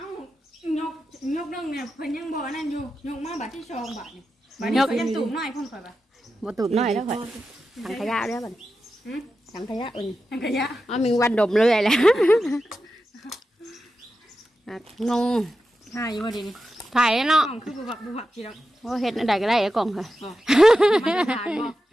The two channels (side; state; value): both; normal; correlation 0.91